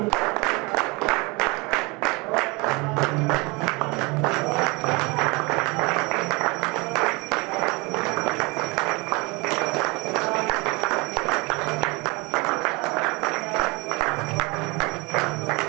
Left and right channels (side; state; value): left; quieter; 26.6 dB